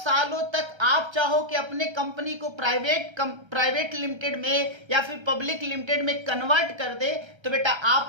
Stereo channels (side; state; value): left; late; 1.3 ms